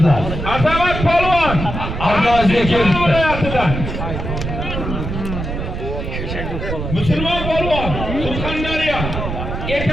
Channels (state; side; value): noise; right; rumble, 5 dB below the sound